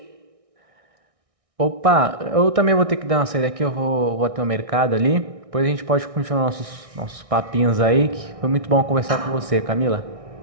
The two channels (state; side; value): late; left; 1.6 ms